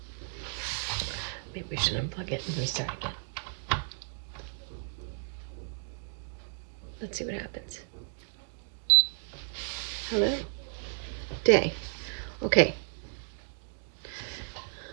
maybe we should unplug it and restart again. Let's see what happens. Hello. Day. Okay.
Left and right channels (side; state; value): left; silent; 56 dB below the other